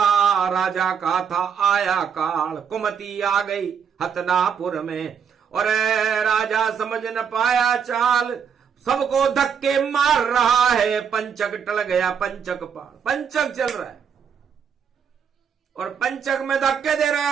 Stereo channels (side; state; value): left; quieter; 7.2 dB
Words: राजा का था आया काल, कुमति आ गई हतनापुर में, और राजा समझ न पाया चाल। सबको धक्के मार रहा है। पंचक टल गया, पंचक पार, पंचक चल रहा है और पंचक में धक्के दे रहा